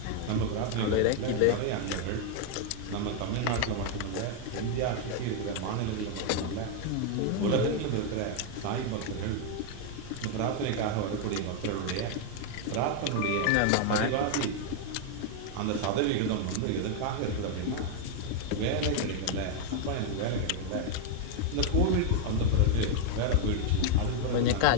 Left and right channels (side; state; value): both; different; correlation 0.00